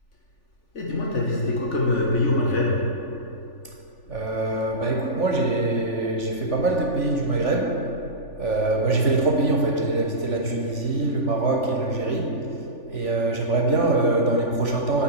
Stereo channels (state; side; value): late; right; 3.4 ms